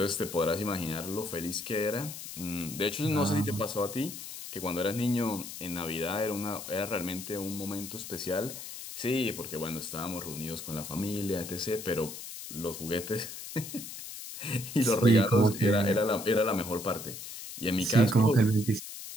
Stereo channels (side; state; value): left; noise; hiss, 10 dB below the sound